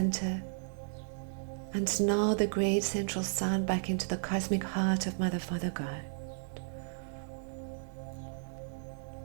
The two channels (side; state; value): left; silent; digital silence